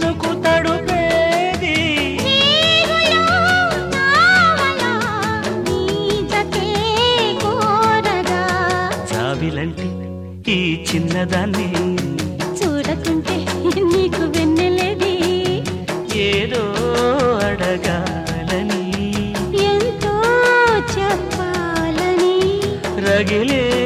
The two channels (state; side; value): identical; both; correlation 1.00